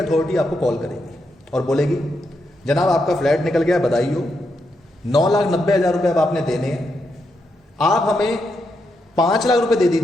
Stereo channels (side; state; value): both; normal; correlation 0.82